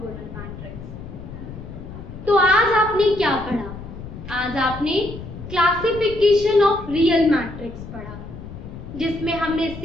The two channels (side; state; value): left; noise; rumble, 12 dB below the sound